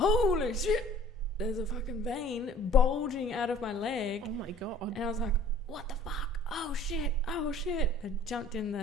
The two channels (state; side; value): normal; both; correlation 0.50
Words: shit, there's a fucking vein bulging out of my leg. Oh my God. And I was like, what the fuck? Oh shit. I jumped in